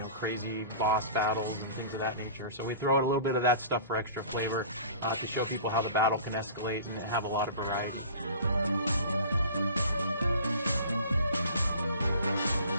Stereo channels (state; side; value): inverted; both; correlation -0.43